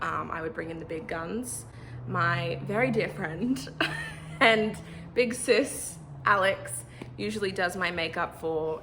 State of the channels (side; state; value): both; identical; correlation 1.00